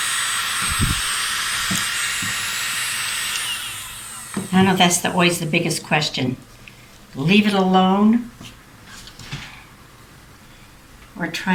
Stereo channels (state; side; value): identical; both; correlation 1.00